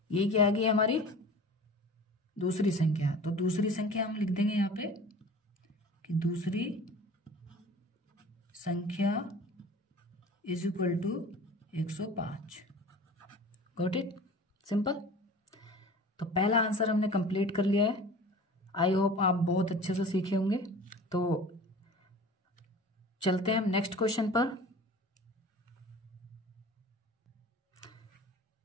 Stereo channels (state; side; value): normal; both; correlation 0.41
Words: ये क्या आ गई हमारी दूसरी संख्या। तो दूसरी संख्या हम लिख देंगे यहाँ पे कि दूसरी संख्या is equal to 105। Got it, simple. तो पहला आंसर हमने कंप्लीट कर लिया है। आई होप आप बहुत अच्छे से सीखे होंगे। तो चलते हैं हम नेक्स्ट क्वेश्चन पर।